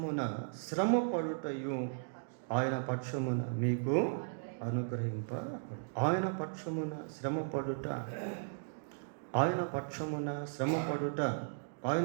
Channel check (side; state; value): left; silent; digital silence